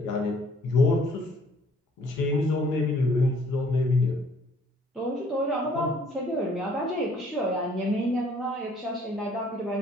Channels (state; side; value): normal; both; correlation 0.60